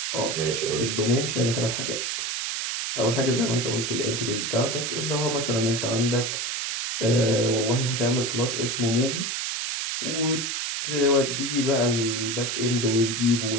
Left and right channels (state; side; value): noise; right; hiss, 2 dB below the sound